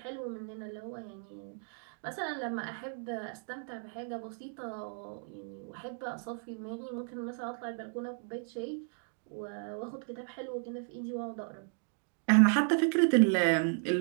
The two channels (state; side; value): silent; left; 55 dB below the other